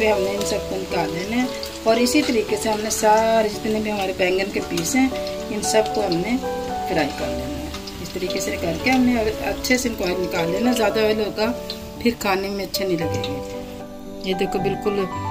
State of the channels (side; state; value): both; identical; correlation 1.00